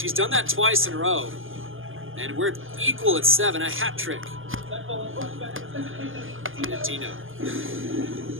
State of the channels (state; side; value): late; left; 0.59 ms